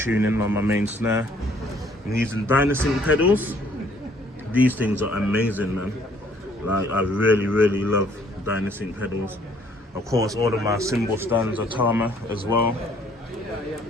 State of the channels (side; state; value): both; normal; correlation 0.61